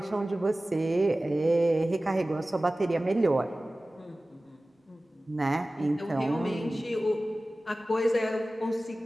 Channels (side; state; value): both; normal; correlation 0.97